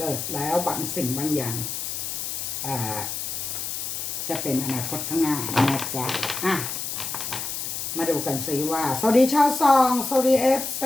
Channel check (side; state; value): left; noise; hiss, 4 dB below the sound